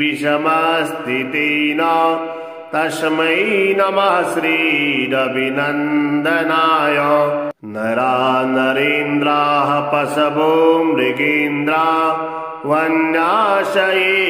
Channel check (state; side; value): identical; both; correlation 1.00